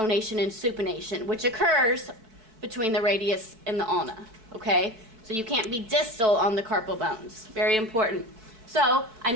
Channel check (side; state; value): left; late; 4.6 ms